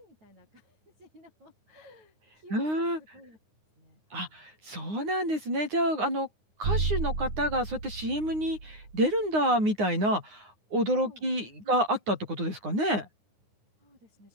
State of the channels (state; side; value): late; left; 9.6 ms